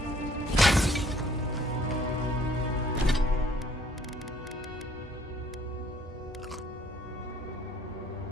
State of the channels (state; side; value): normal; both; correlation 0.60